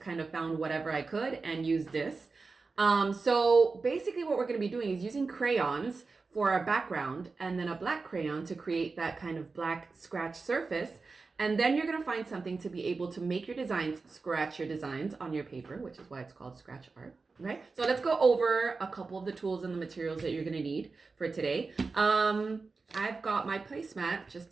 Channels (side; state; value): left; quieter; 4.2 dB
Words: kind of found whatever I could and used this. So basically what we're going to be doing is using crayons for our background and then a black crayon to create that kind of black scratch surface. And then you're going to find something to be able to make your designs, scratch your designs on your paper, which is why it's called scratch art. Okay, so let's go over a couple of the tools and the materials that you're going to need for today. I've got my placemat just